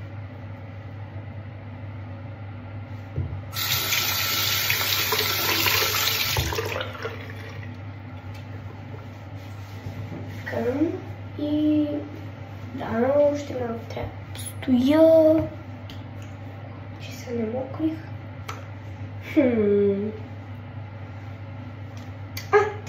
И да, още малко трябва да стоя, че се намокрих.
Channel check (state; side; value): identical; both; correlation 1.00